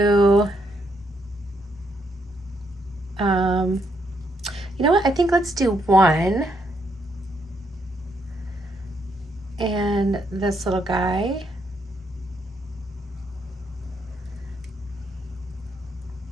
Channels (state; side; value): normal; both; correlation 0.75